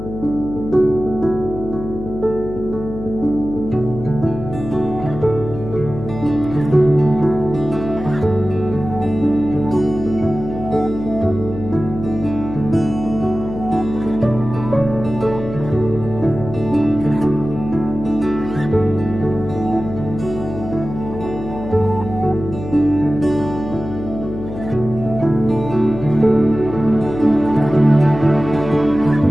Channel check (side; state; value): left; noise; hum, 9 dB below the sound